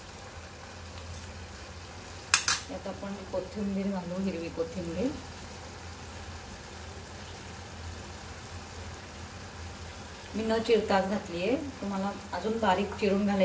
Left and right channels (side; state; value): both; identical; correlation 1.00